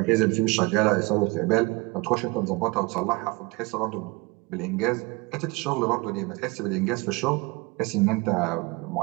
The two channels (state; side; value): quieter; left; 25.8 dB